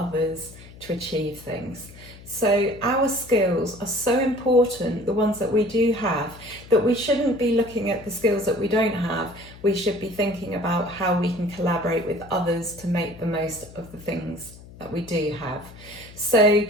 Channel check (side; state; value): left; noise; hum, 19 dB below the sound